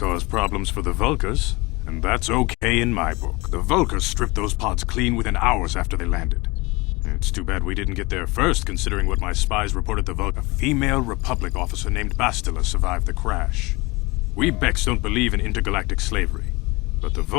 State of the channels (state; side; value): quieter; right; 24.2 dB